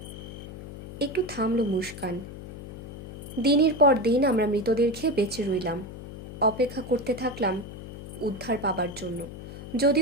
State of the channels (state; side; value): noise; left; hum, 11 dB below the sound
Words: একটু থামল মুস্কান। দিনের পর দিন আমরা মৃতদের খেয়ে বেঁচে রইলাম, অপেক্ষা করতে থাকলাম উদ্ধার পাবার জন্য।